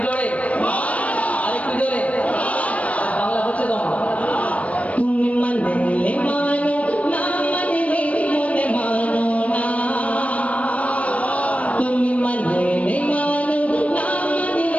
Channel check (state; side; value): late; right; 0.066 ms